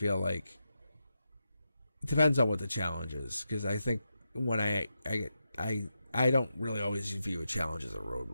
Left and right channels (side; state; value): both; inverted; correlation -0.87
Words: like it depends on what the challenge is. Because I think when I don't really always view a challenge as a